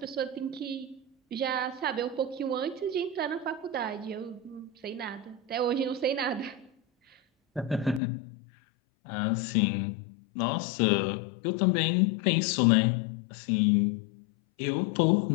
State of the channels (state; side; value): drops out; right; at 8.0 s